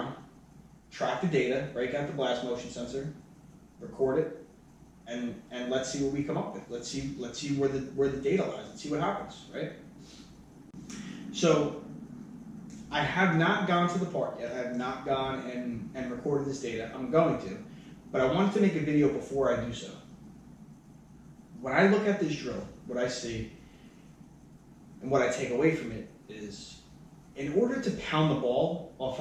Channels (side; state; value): both; identical; correlation 1.00